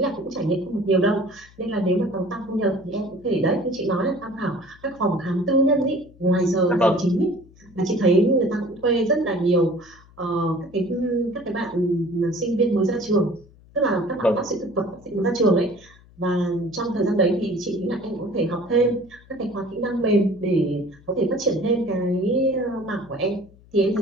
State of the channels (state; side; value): noise; left; hum, 25 dB below the sound